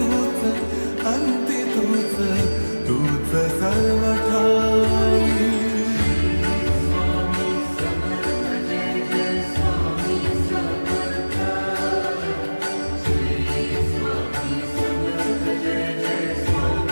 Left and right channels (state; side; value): inverted; both; correlation -1.00